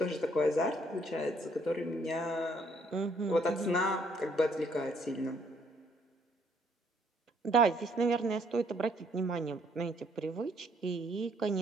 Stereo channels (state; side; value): normal; both; correlation 0.66